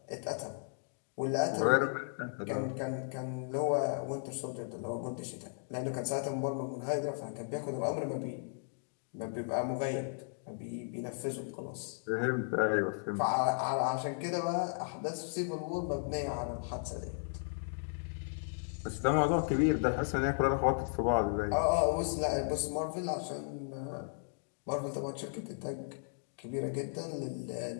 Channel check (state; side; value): silent; right; digital silence